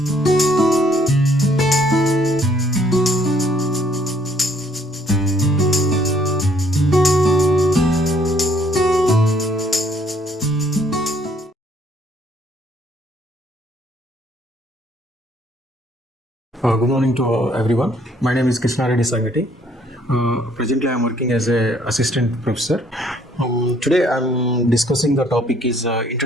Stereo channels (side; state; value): both; normal; correlation 0.64